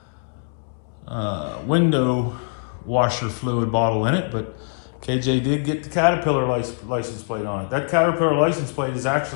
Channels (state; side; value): silent; right; 64 dB below the other